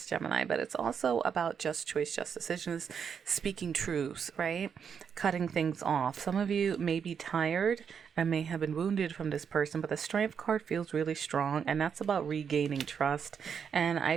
Gemini, but it's also about just choice, just decisions, speaking truths, right? Cutting things off. Some of you may be tired and may have been wounded from this person, but the Strength card feels really strong, and that's about regaining trust. And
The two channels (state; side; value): quieter; left; 7.1 dB